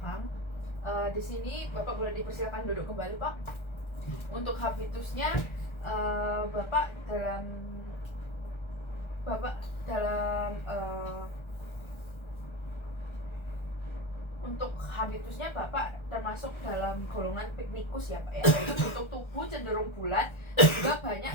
Di sini Bapak boleh dipersilakan duduk kembali Pak. Untuk habitusnya Bapak untuk habitusnya Bapak termasuk dalam golongan piknikus ya Pak ya. Untuk tubuh cenderung bulat, juga banyak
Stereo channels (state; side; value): late; right; 1.3 ms